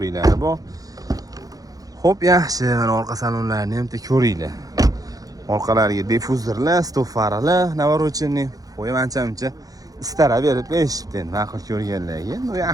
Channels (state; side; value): late; left; 0.18 ms